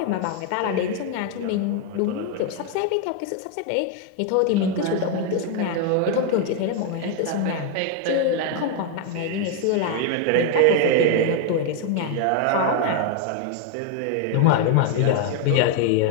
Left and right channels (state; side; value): different; both; correlation 0.01